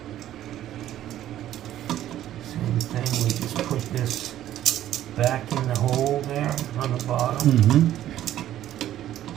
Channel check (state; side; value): quieter; left; 12.5 dB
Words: Same thing, we just put this back in the hole there on the bottom. Mm-hmm.